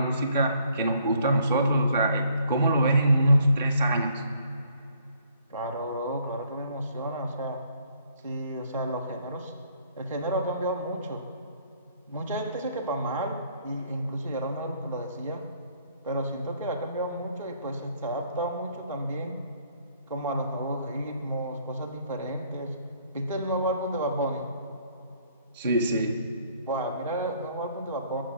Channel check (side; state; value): both; inverted; correlation -0.64